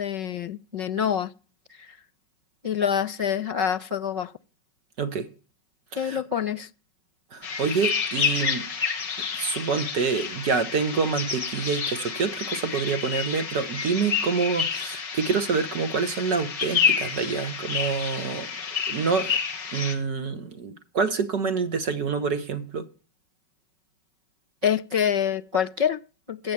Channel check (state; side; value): late; left; 5.4 ms